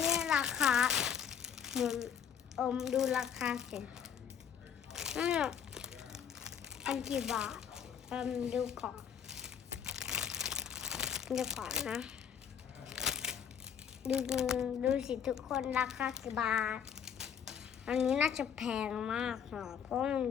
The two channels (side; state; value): right; quieter; 8.1 dB